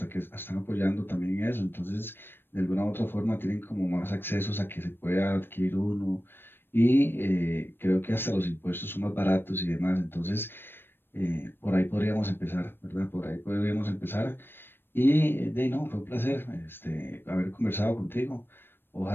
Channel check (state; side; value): late; right; 0.099 ms